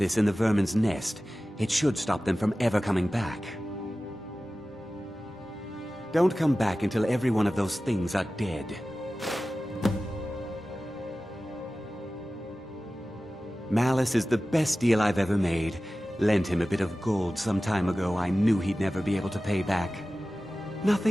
in the vermin's nest, it should stop them from ever coming back. Don't come back until every one of those things are dead. Malus is the best deal I've ever made. Lent him a bit of gold some time ago I knew he'd never be able to pay back.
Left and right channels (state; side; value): normal; both; correlation 0.96